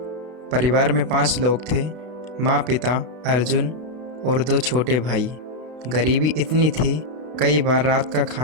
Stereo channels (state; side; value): late; left; 32 ms